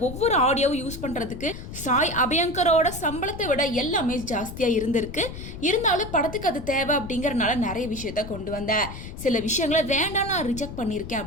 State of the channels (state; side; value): noise; left; rumble, 11 dB below the sound